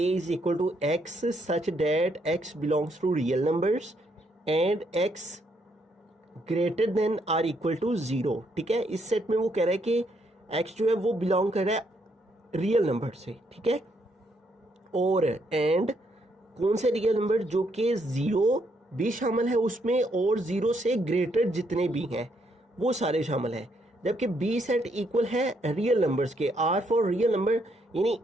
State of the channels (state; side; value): normal; both; correlation 0.74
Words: is equal to x such that x belongs to real numbers and x greater than or equal to 0। ठीक है, इस सेट में वो कह रहा है कि x जो है वो बिलोंग कर रहा है रियल नंबर से। ठीक है, और एंड कौन से रियल नंबर, जो कि 0 भी शामिल है उसमें और 0 से ग्रेटर जितने भी हैं वो सारे शामिल हैं। जबकि बी सेट इक्वल है रियल नंबर्स के, आर फॉर रियल नंबर, यानी